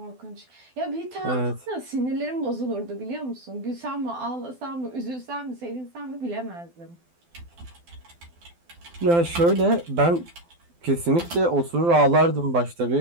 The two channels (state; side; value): late; left; 12 ms